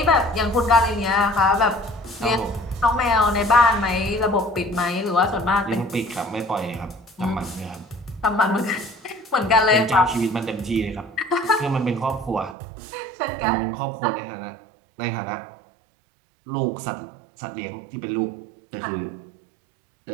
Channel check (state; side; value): drops out; left; at 12.6 s